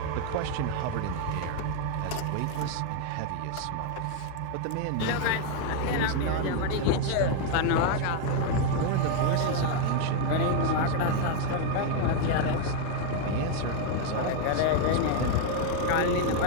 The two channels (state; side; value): different; both; correlation 0.00